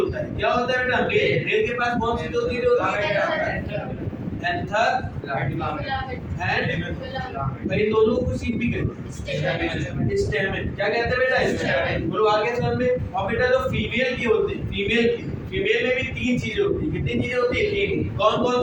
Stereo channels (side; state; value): both; identical; correlation 1.00